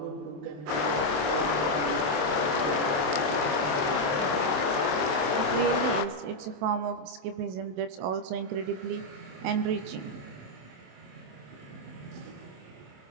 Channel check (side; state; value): left; late; 27 ms